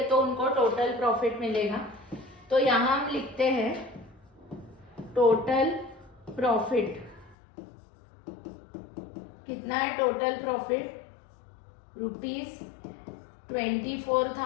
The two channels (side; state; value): right; drops out; at 7.4 s